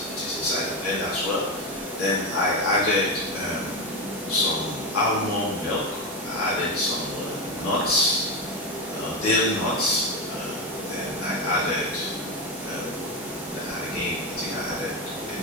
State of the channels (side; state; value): both; normal; correlation 0.14